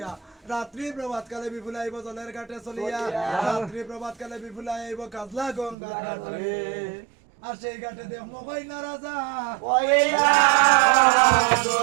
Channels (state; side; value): drops out; left; at 5.8 s